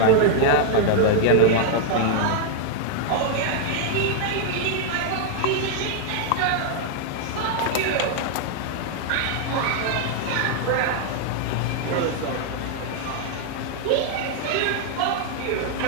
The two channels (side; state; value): both; different; correlation 0.00